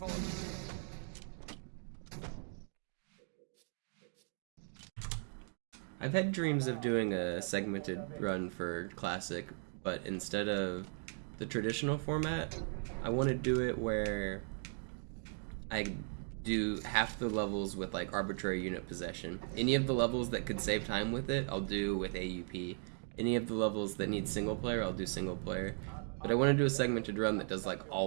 uns. I've had dreams of doing a segmented run for Classic, but instead of the traditional format, I want to do it where I do half the levels with like arbitrary unit possession. Any of the levels that could save time with it, I'll do with AUP. Any of the levels that need single player, I'll do single player. But I want to do a segmented run that does like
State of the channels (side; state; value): left; silent; 53 dB below the other